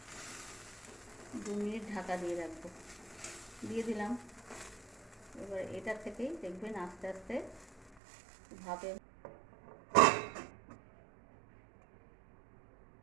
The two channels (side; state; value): left; drops out; at 8.0 s